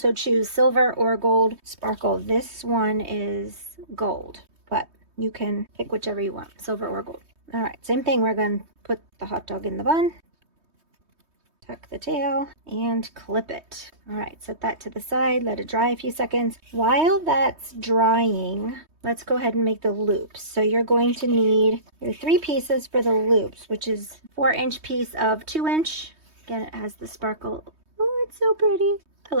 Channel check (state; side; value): late; left; 3.2 ms